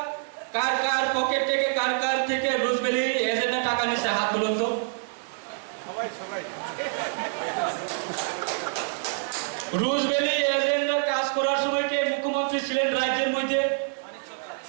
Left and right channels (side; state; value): left; silent; digital silence